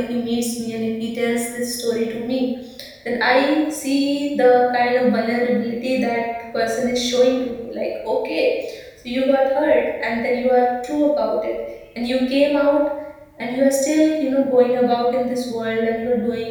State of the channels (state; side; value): identical; both; correlation 1.00